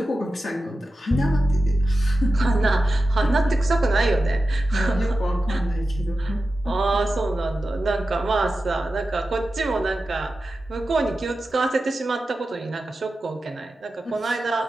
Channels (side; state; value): both; normal; correlation 0.93